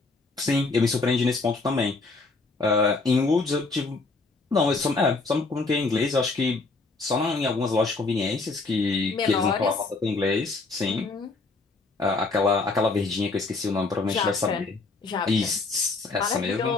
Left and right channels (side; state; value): right; quieter; 3.7 dB